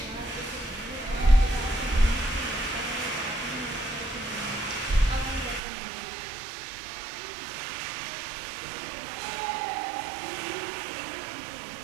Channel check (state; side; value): drops out; left; at 5.6 s